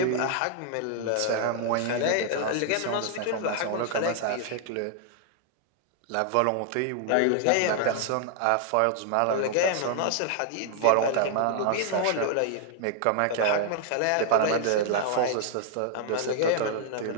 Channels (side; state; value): both; different; correlation 0.00